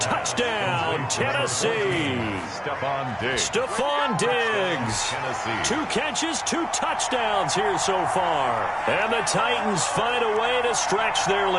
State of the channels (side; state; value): both; identical; correlation 1.00